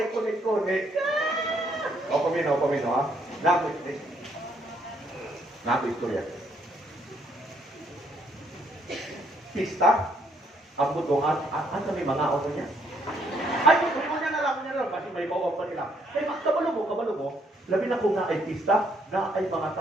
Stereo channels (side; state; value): both; normal; correlation 0.70